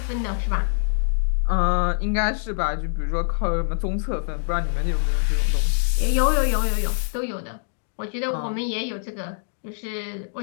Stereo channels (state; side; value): silent; right; digital silence